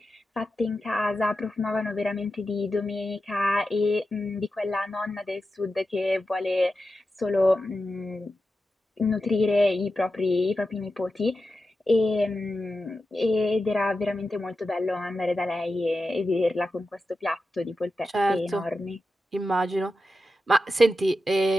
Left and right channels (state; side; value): normal; both; correlation 0.91